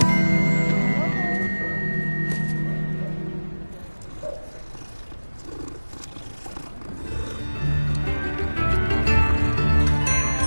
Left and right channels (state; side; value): inverted; both; correlation -1.00